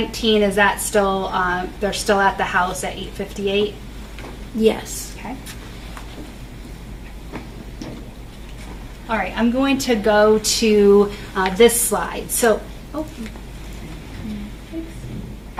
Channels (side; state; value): both; identical; correlation 1.00